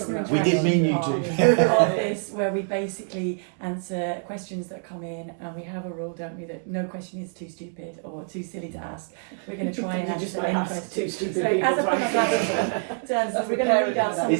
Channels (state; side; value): silent; left; 58 dB below the other